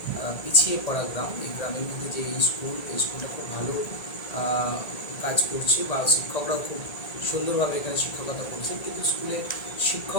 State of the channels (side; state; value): right; late; 1.8 ms